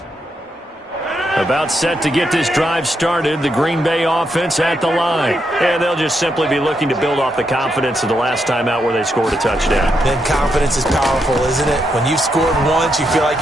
About set to get this drive started, the Green Bay offense at the line. And they'll just simply be looking to build off the confidence of the last time out where they scored a touchdown. Then confidence is powerful, isn't it? When you've scored once, you feel like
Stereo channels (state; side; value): normal; both; correlation 0.81